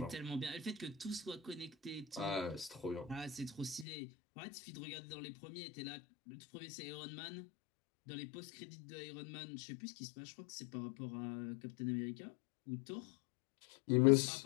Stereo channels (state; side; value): drops out; right; at 3.9 s